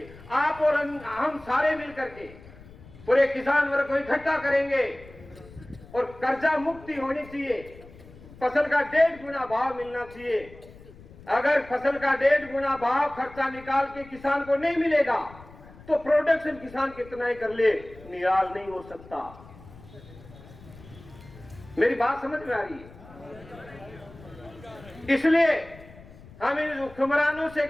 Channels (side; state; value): left; noise; rumble, 20 dB below the sound